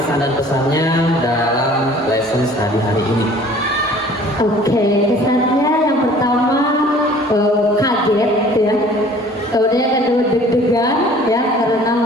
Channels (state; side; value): normal; both; correlation 0.50